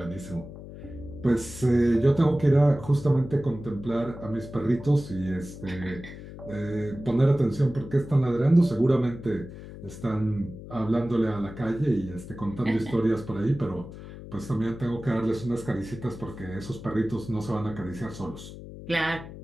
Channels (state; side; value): noise; left; hum, 13 dB below the sound